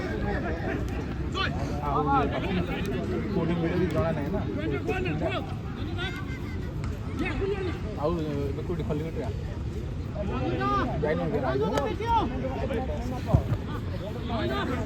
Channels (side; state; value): both; identical; correlation 1.00